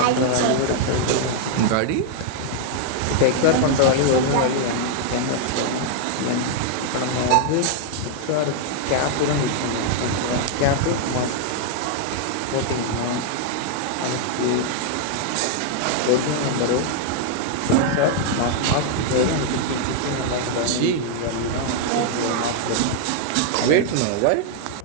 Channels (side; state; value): both; different; correlation 0.00